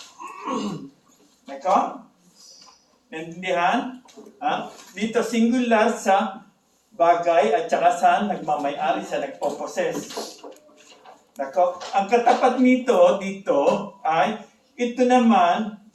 Nako? Naintindihan? Ha? Dito singular sa bagay at saka sa nagmamay-ari, sa nagpo-possess. Nako? Ang katapat nito dito ay ito naman,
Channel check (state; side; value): identical; both; correlation 1.00